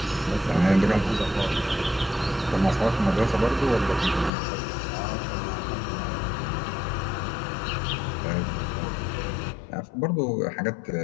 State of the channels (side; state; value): right; drops out; at 4.3 s